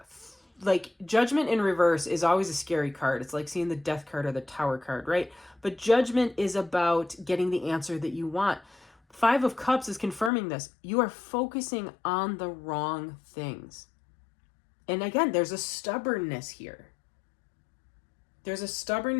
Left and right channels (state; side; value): drops out; right; at 10.3 s